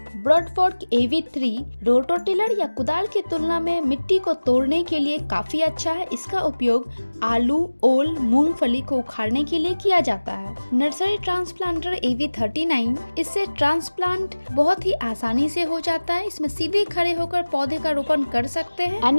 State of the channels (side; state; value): both; inverted; correlation -1.00